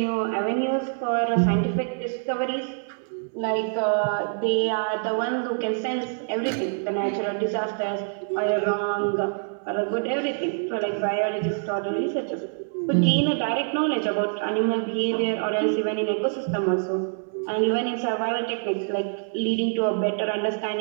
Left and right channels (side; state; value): left; silent; digital silence